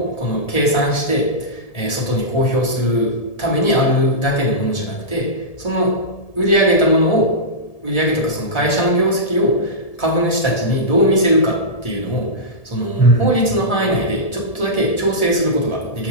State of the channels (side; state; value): right; late; 1.7 ms